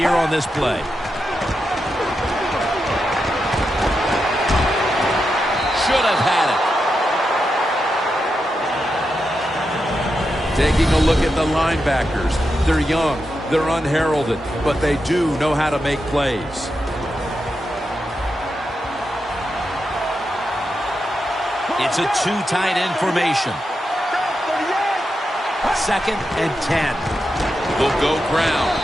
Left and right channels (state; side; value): normal; both; correlation 0.87